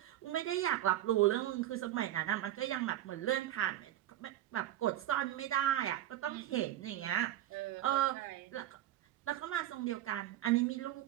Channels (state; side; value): quieter; left; 13.0 dB